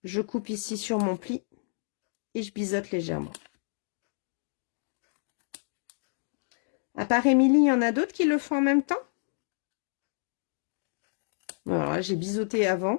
Je coupe ici sur mon pli. Et je biseaute légèrement. À part Émilie, il y en a d'autres qui le font en même temps? Alors là, j'ai biseauté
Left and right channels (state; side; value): silent; right; digital silence